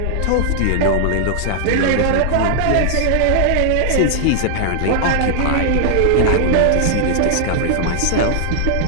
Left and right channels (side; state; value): both; different; correlation -0.01